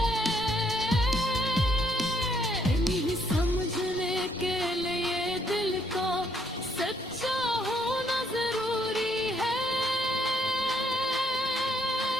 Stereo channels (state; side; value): normal; both; correlation 0.70